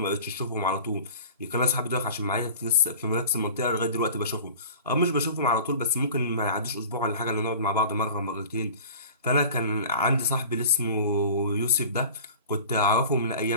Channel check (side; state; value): both; inverted; correlation -0.41